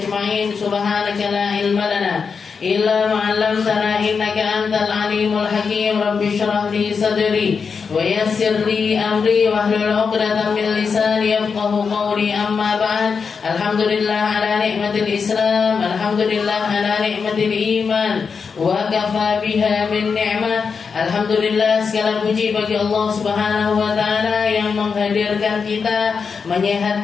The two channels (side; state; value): right; quieter; 5.6 dB